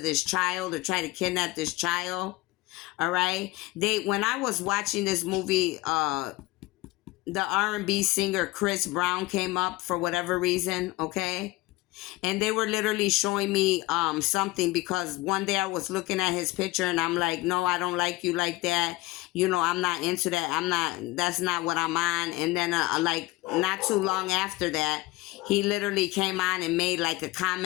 child, or try to kidnap this child. All right. When I was watching this movie, the R&B singer Chris Brown came up for whatever reason. Okay. And they were literally showing me something, because one day I was looking at his picture and I'm like, no, I don't like you like that. I'm not into that. That's not what I'm on. And then like not too long after that, he literally came on and made like a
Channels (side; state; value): right; quieter; 20.1 dB